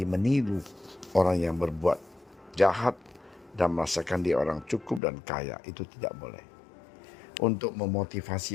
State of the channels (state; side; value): drops out; right; at 5.0 s